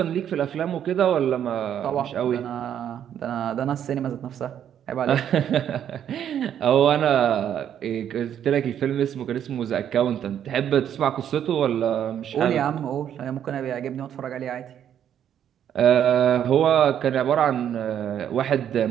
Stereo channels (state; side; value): quieter; left; 9.6 dB